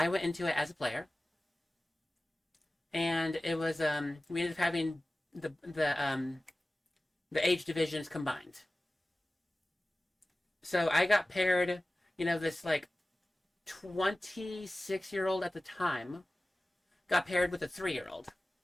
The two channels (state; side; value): normal; both; correlation 0.97